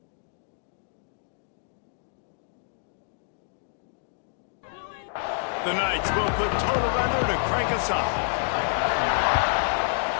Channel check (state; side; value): silent; right; digital silence